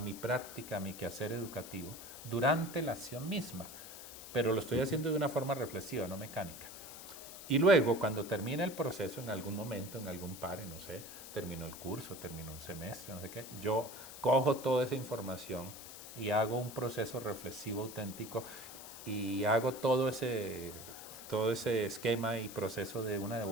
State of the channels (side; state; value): left; noise; hiss, 13 dB below the sound